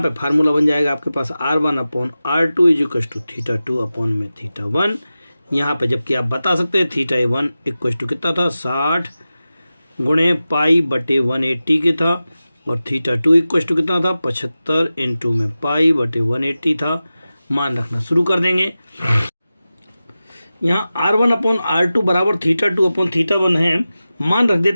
पे फार्मूला बन जाएगा आपके पास R1/R2 = θ2 अपॉन में θ1। यहाँ पे जबकि आप बता सकते हैं θ1 = कितना था, 60 गुणे पाई/180 के था, और θ2 = कितना था, 75 इंटू में पाई/180 था। मान रखना शुरू कर देंगे। यहाँ R1/R2 बराबर θ2 अपॉन θ1 है, मान रख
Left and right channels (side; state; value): both; inverted; correlation -0.94